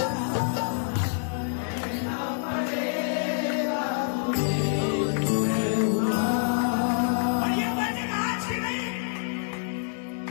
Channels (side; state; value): right; silent; digital silence